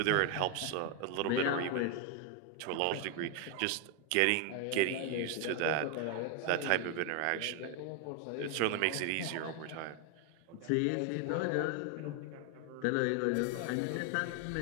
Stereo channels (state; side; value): different; both; correlation 0.01